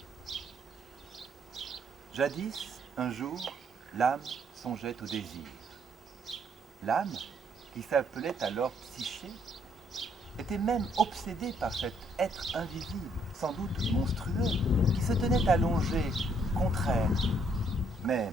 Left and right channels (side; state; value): both; normal; correlation 0.68